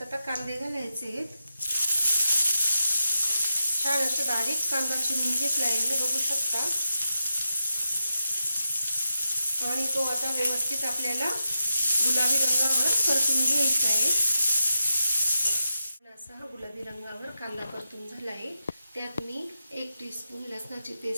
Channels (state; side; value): inverted; both; correlation -0.88